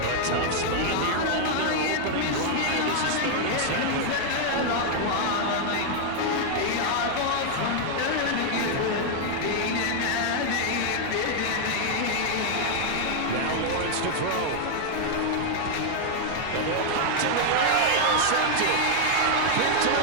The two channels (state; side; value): different; both; correlation 0.00